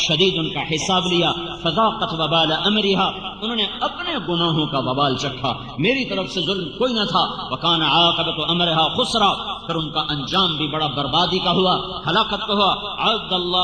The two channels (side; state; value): both; identical; correlation 1.00